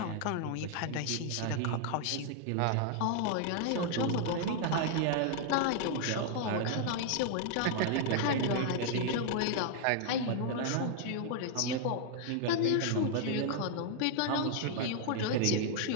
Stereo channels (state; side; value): different; both; correlation 0.00